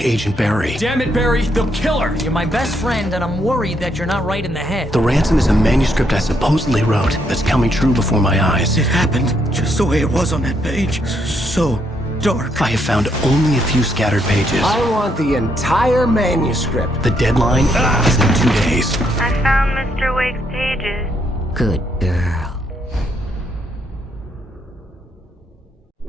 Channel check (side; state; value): both; normal; correlation 0.75